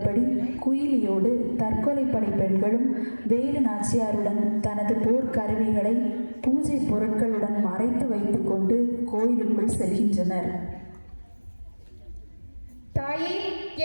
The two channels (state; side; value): inverted; both; correlation -1.00